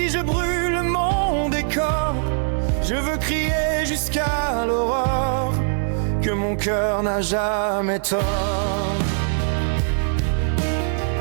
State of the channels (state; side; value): silent; left; digital silence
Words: je brûle mon décor. Je veux crier jusqu'à l'aurore que mon cœur n'a jamais tort.